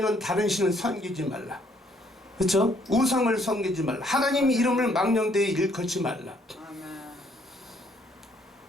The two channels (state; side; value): normal; both; correlation 0.66